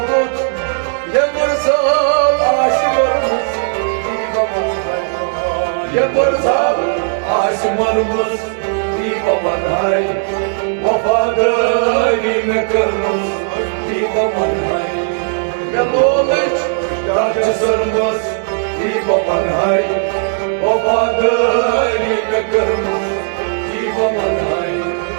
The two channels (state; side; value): silent; left; digital silence